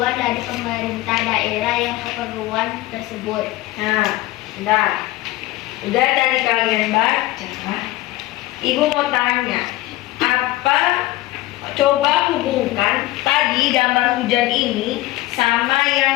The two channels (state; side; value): quieter; right; 17.5 dB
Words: dari pemerintah daerah yang keperluan tersebut. Nah, udah dari kalian baca. Ibu mau tanya, apa? Coba hubungkan tadi gambar hujan ini sama